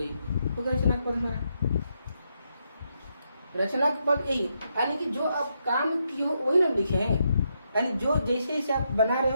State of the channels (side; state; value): both; inverted; correlation -0.80